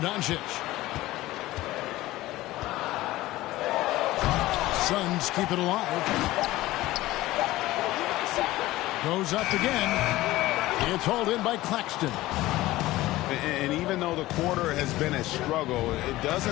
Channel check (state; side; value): quieter; right; 17.2 dB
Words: Suns keep it alive. Goes up again. It's hauled in by Claxton. And even though the quarter has been a struggle, it